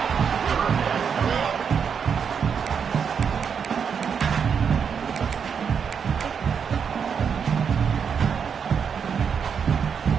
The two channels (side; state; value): left; quieter; 6.9 dB